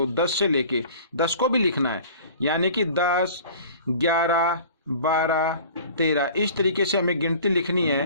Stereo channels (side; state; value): both; inverted; correlation -0.45